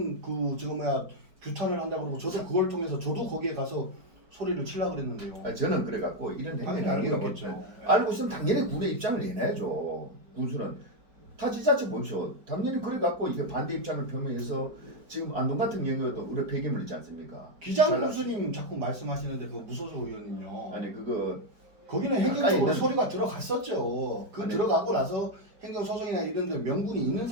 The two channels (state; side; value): late; left; 4.8 ms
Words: 규탄을 한다고 그러고 저도 그걸 통해서 저도 거기에 가서 소리를 치려고 그랬는데요. 저는 그래갖고 이런 당연히 행위를 알고 알고 있겠죠. 알고 있으면 당연히 군의 입장을 내놔야죠. 군수는 다 지자체 보십시오. 당연히 그래갖고 이게 반대 입장을 표명해서 지금 안동 같은 경우에도 우리 폐기물 있지 않습니까? 기장 교수님 자꾸 말씀하시는데 그 무소속 의원님요. 아니 그거 거기는 가까이 행정적으로 있는- 소리가 들어갔었죠. 그 아니, 들어가고 나서 행정소송이나 이런 데 명분이 있는